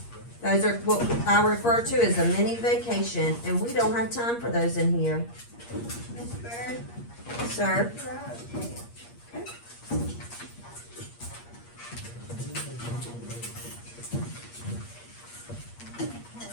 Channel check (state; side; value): late; right; 8.5 ms